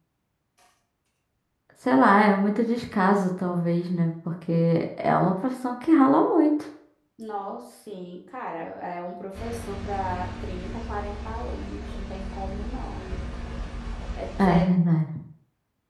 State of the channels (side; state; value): both; identical; correlation 1.00